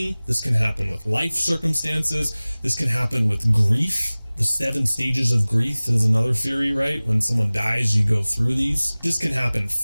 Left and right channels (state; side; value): inverted; both; correlation -0.99